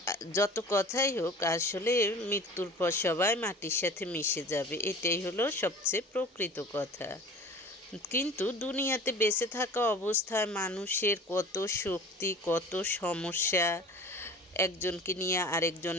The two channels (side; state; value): both; normal; correlation 0.41